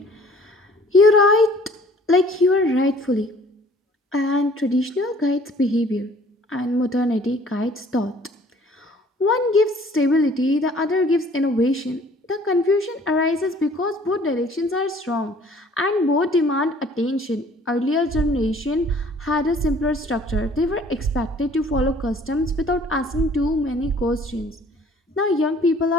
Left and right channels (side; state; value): both; normal; correlation 0.54